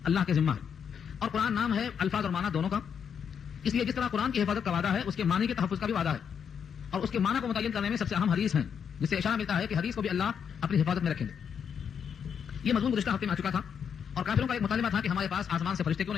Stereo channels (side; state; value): right; quieter; 7.4 dB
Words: اللہ کے ذمہ ہے. اور قرآن نام ہے الفاظ اور معنی دونوں کا، اس لیے جس طرح قرآن کی حفاظت کا وعدہ ہے اس کے معنی کے تحفظ کا بھی وعدہ ہے. اور اس کے معنی کو متعین کرنے میں سب سے اہم حدیث ہیں، جس سے اشارہ ملتا ہے کہ حدیث کو بھی اللہ اپنی حفاظت میں رکھیں گے. یہ مضمون گزشتہ ہفتے میں آ چکا تھا اور کافروں کا ایک مطالبہ تھا کہ ہمارے پاس آسمان سے فرشتے کیوں